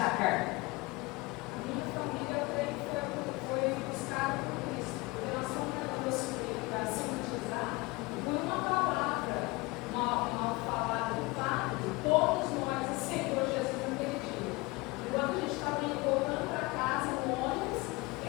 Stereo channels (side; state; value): right; quieter; 23.8 dB